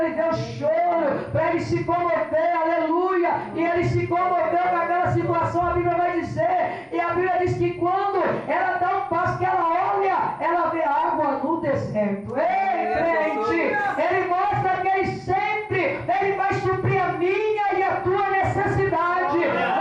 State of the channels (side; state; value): both; identical; correlation 1.00